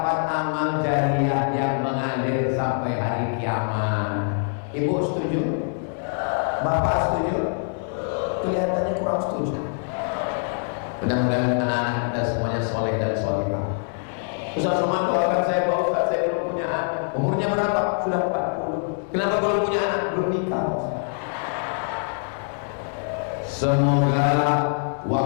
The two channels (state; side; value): silent; right; 62 dB below the other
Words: amal jariah yang mengalir sampai hari kiamat. Ibu setuju? Bapak setuju? Kelihatannya kurang setuju. Mudah-mudahan anak-anak kita semuanya soleh dan solehah. Ustaz Somad doakan saya, Pak Ustaz, saya belum punya anak. Umurnya berapa? Sudah 40. Kenapa belum punya anak? Belum nikah. Semoga